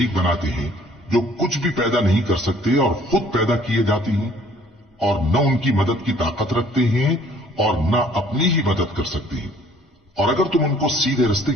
بناتے ہیں جو کچھ بھی پیدا نہیں کر سکتے اور خود پیدا کیے جاتے ہیں، اور نہ ان کی مدد کی طاقت رکھتے ہیں اور نہ اپنی ہی مدد کر سکتے ہیں؟ اور اگر تم ان کو سیدھے رستے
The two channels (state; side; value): normal; both; correlation 0.57